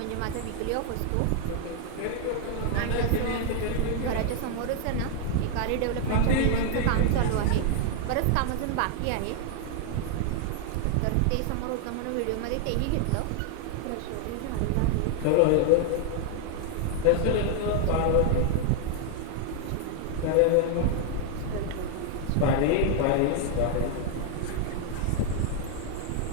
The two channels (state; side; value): different; both; correlation 0.00